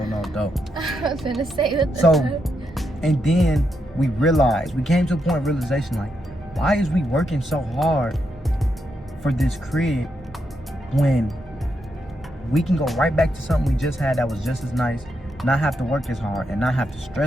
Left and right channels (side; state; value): both; normal; correlation 0.82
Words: no dope. I was gonna say what the So, and then we came to a point of realization, like, why is we working so hard for this crib when we can go right back to something we just had that was just as nice, not have to work as hard and not have to